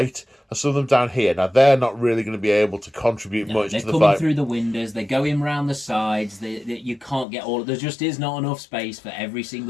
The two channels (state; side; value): drops out; right; at 7.2 s